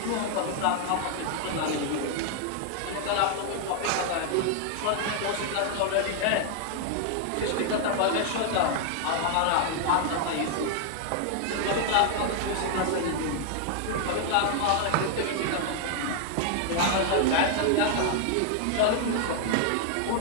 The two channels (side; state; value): both; different; correlation 0.00